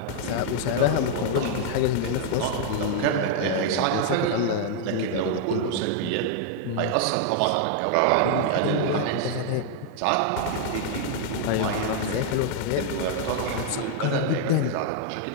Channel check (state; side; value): different; both; correlation 0.00